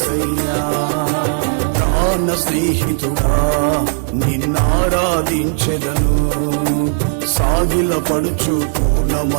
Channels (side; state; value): left; silent; 69 dB below the other